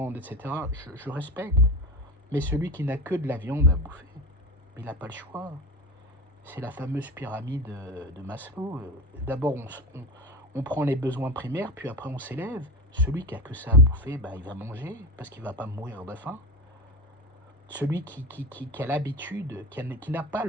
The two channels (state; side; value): normal; both; correlation 0.24